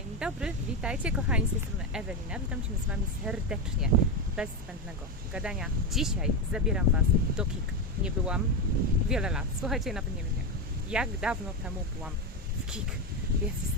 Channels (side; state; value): both; normal; correlation 0.13